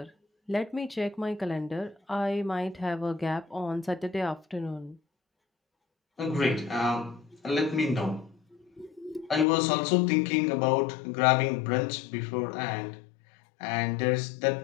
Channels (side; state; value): right; drops out; at 9.5 s